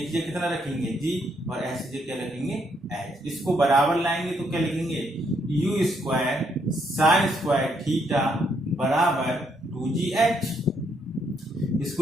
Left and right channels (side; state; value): both; normal; correlation 0.73